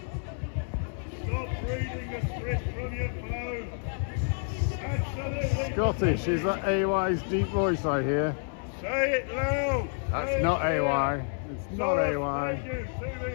Scottish, is that AY's deep voice I hear? Say it loud! That's not AY. It's not AY.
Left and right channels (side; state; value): right; silent; 58 dB below the other